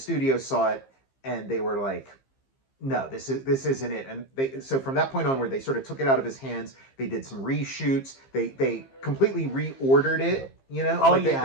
saw it, and they were like, no, this isn't it. And so from that point onward, they sort of took it out of his hands. They did some reshoots. They completely reordered it. You know,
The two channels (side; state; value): right; late; 15 ms